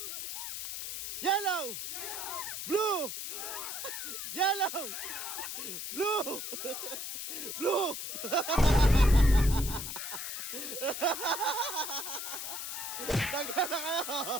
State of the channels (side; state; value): left; noise; hiss, 6 dB below the sound